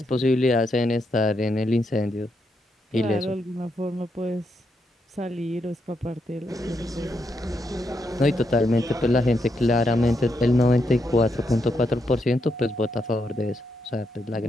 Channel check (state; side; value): normal; both; correlation 0.80